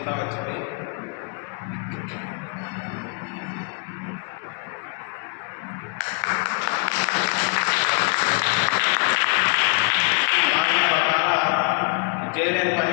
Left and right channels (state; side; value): quieter; right; 36.0 dB